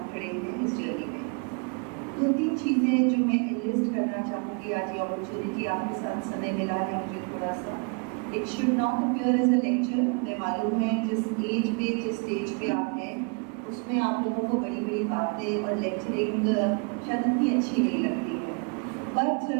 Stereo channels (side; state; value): left; quieter; 35.6 dB